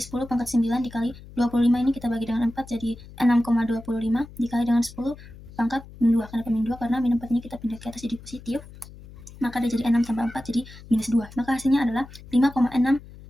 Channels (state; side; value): noise; left; hum, 18 dB below the sound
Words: pangkat 9 dikali 25 ini kita bagi dengan 4 jadi 6,25 dikali dengan 10 pangkat min 2. Kenapa min 2? Karena min 4 ini kita pindah ke atas jadi positif, maka dia jadi 6 tambah 4 jadi minus 2. Maka hasilnya adalah